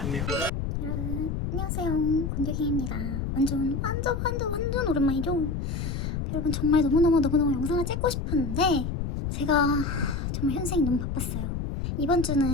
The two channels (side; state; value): left; noise; rumble, 3 dB below the sound